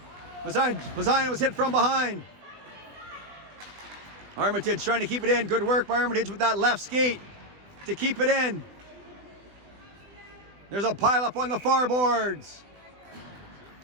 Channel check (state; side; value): late; left; 20 ms